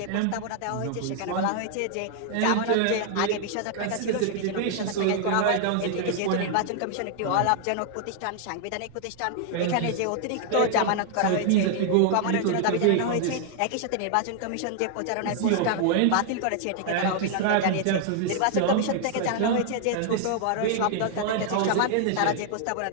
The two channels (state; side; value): different; both; correlation 0.00